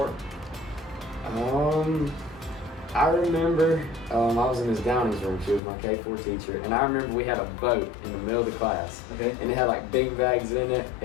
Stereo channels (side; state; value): right; drops out; at 5.6 s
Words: I remember I was in Ms. Downing's room. She was my K4 teacher, and I remember we had a boat in the middle of the class. Okay. And it had like bean bags in it,